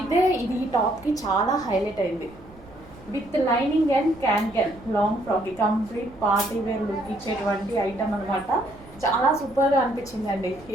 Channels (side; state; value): right; noise; rumble, 22 dB below the sound